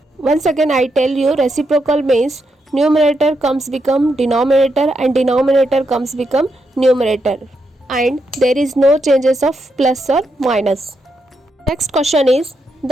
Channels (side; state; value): both; normal; correlation 0.82